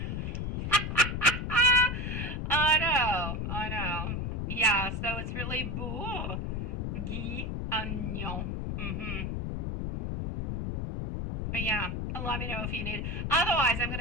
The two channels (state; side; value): noise; left; rumble, 2 dB below the sound